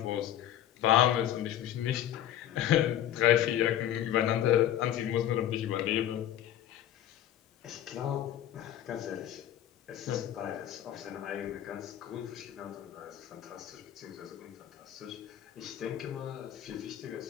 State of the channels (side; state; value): right; quieter; 11.5 dB